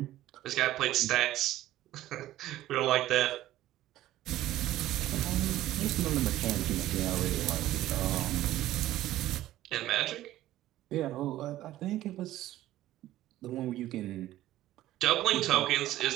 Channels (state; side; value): quieter; left; 14.5 dB